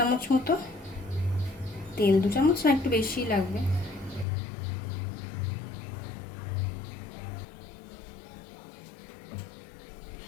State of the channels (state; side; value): drops out; right; at 4.2 s